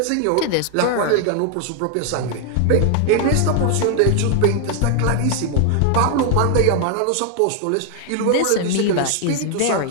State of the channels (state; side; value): different; both; correlation 0.00